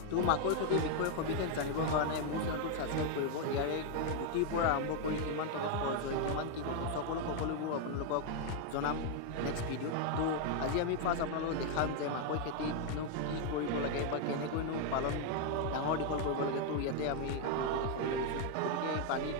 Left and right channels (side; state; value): both; different; correlation 0.01